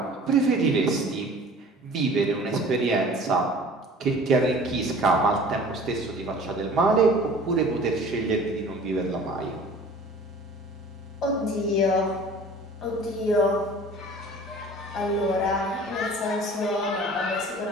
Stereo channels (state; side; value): normal; both; correlation 0.45